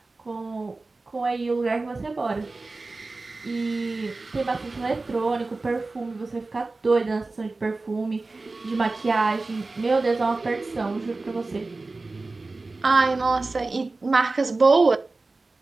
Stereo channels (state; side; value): quieter; left; 3.4 dB